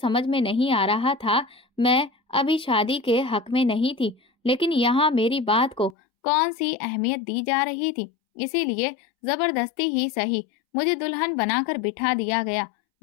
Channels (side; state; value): right; drops out; at 6.0 s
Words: में नहीं आ रहा था। मैं अभी शादी के हक में नहीं थी, लेकिन यहाँ मेरी बात को कौन सी अहमियत दी जा रही थी, इसीलिए जबरदस्ती ही सही मुझे दुल्हन बनाकर बिठा दिया गया।